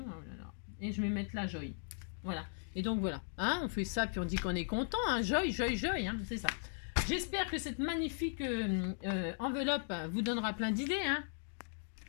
oh là là. Et je vais mettre là, joy. Voilà. Et donc voilà, hein, on fait ça, puis on dit qu'on est content, hein, joy, joy, joy, hein, c'est ça. J'espère que cette magnifique enveloppe vous donnera plein d'idées, hein.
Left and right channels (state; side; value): silent; right; digital silence